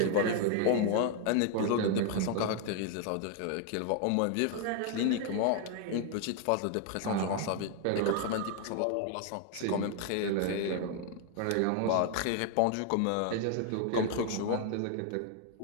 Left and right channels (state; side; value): different; both; correlation 0.00